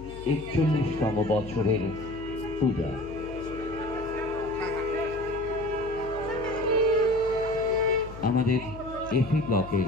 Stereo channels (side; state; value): left; noise; hum, 14 dB below the sound